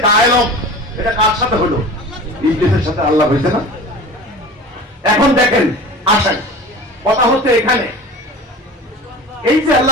ডায়ালগ, এটা কার সাথে হলো? ইবলিসের সাথে আল্লাহ হয়েছে না? এখন দেখেন, আসেন, কথা হচ্ছে এখানে, এই যে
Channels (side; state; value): both; normal; correlation 0.37